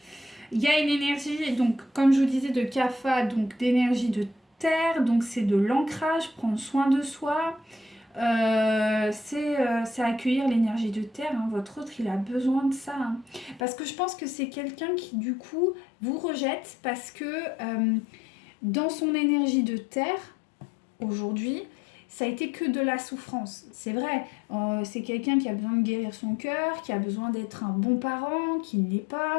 Il y a une énergie, donc, comme je vous disais, de Kapha, donc d'énergie de terre. Donc, c'est de l'ancrage, prendre soin de soi. C'est accueillir l'énergie de terre, hein. Votre autre il a besoin de ça hein. Parce que je pense que c'est quelqu'un qui du coup vous rejette parce que dans son énergie de terre aujourd'hui, ça a été que de la souffrance. C'est vrai, c'est quelqu'un qui a besoin de guérir son cœur, qui a besoin d'être un bon parent, qui ne l'est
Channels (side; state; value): right; drops out; at 13.6 s